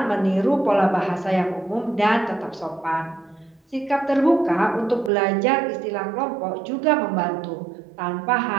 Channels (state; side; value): drops out; left; at 5.1 s